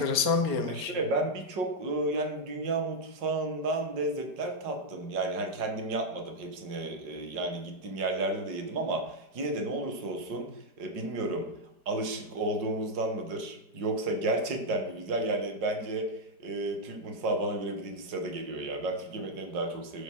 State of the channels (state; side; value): late; left; 4.9 ms